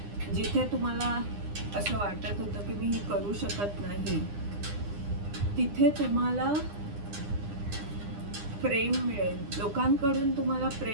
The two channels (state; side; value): late; left; 9.9 ms